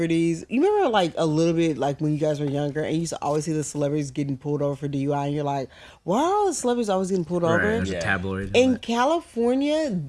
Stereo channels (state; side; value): identical; both; correlation 1.00